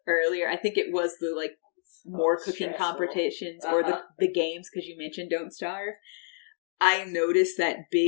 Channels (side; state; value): right; silent; digital silence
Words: earlier, I think it was the like more cooking competitions or the games, because you mentioned Don't Starve. I noticed that